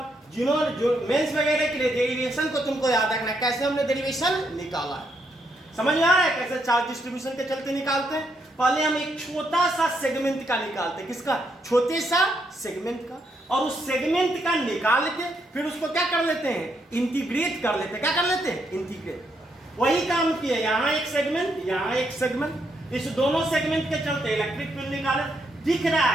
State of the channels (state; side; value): normal; both; correlation 0.77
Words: जिन्होंने जो मेंस वगैरह के लिए डेरिवेशन को तुमको याद रखना है, कैसे हमने डेरिवेशन निकाला है, समझ में आ रहा है कैसे चार्ज डिस्ट्रीब्यूशन के चलते निकालते हैं। पहले हम एक छोटा सा सेगमेंट का निकालते हैं, किसका छोटे सा सेगमेंट का, और उस सेगमेंट का निकाल के फिर उसको क्या कर लेते हैं इंटीग्रेट कर लेते हैं, क्या कर लेते हैं इंटीग्रेट। वही काम किया, यहाँ एक सेगमेंट यहाँ एक सेगमेंट, इस दोनों सेगमेंट के चलते इलेक्ट्रिक फील्ड निकाले, दिख रहा